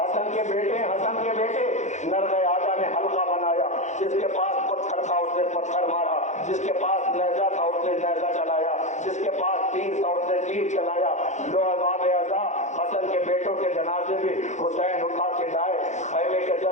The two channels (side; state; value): right; late; 0.34 ms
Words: حسن کے بیٹے ہیں, حسن کے بیٹے. نرغے آجا نے حلقہ بنایا, جس کے پاس پتھر تھا اس نے پتھر مارا, جس کے پاس نیزہ تھا اس نے نیزہ چلایا, جس کے پاس تیر تھا اس نے تیر چلایا. لو عذاب اعضا حسن کے بیٹوں کے جنازے بھی حسین اٹھا کے لائے. خیمے کے